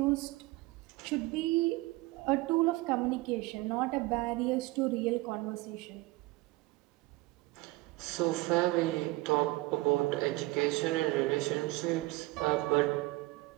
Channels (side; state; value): left; quieter; 20.8 dB